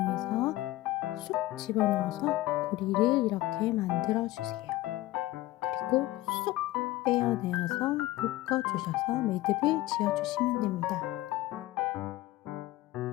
쑥 집어넣어서 고리를 이렇게 만들어 주세요. 그리고 쏙 빼어내어서 묶어주셔서 매듭을 지어주시면 됩니다.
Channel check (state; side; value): quieter; right; 16.9 dB